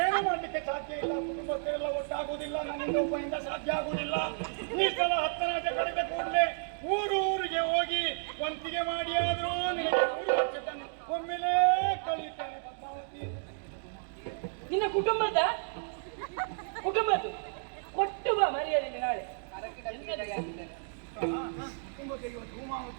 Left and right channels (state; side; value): silent; left; digital silence